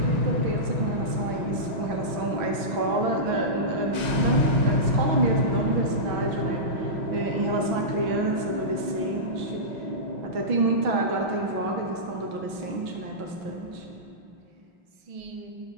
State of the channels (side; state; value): left; late; 6.0 ms